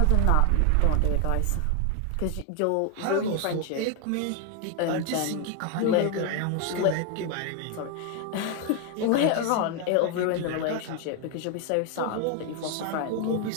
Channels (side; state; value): both; different; correlation 0.00